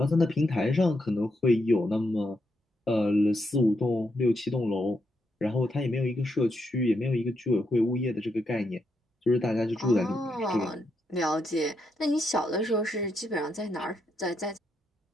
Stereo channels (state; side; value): normal; both; correlation 0.81